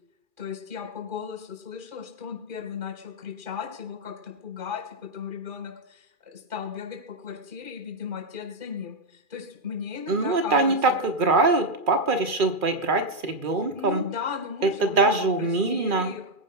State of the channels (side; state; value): left; late; 2.4 ms